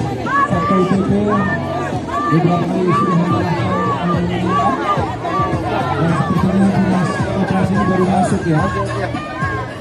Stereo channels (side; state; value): both; identical; correlation 1.00